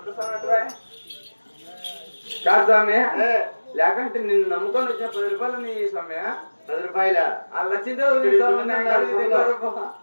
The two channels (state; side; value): inverted; both; correlation -1.00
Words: స్వామి అటువా కాదు స్వామి లేకంటే నిన్ను నమ్ముకొని వచ్చిన 10 రూపాయలు నీ స్వామి 10 రూపాయల లచ్చిందే